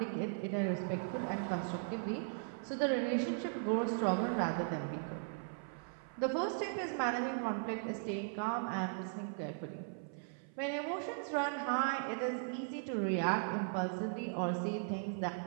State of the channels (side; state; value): left; silent; 52 dB below the other